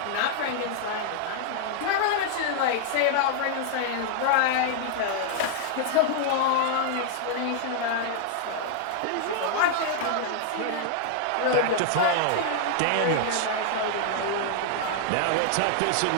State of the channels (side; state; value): both; different; correlation 0.00